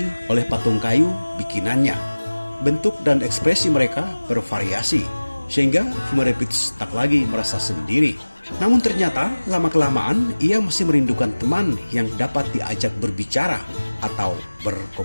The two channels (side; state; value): both; inverted; correlation -1.00